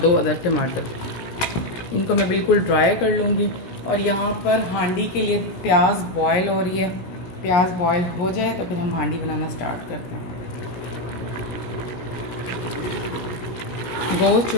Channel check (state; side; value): late; right; 17 ms